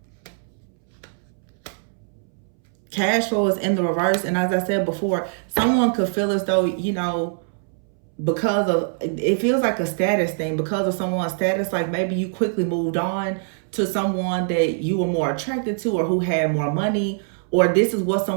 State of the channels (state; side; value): silent; left; 63 dB below the other